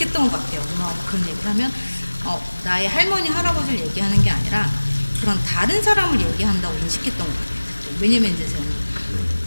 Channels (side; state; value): both; inverted; correlation -1.00